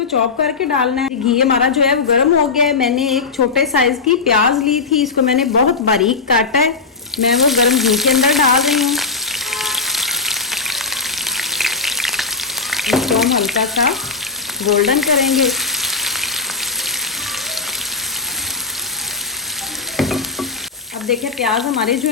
चॉप करके डालना है। घी हमारा जो है वो गर्म हो गया है। मैंने एक छोटे साइज़ की प्याज ली थी, इसको मैंने बहुत बारीक काटा है। मैं वो गर्म घी के अंदर डाल रही हूँ। इसको हम हल्का सा गोल्डन करेंगे। अब देखें प्याज हमारे जो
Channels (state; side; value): quieter; right; 4.5 dB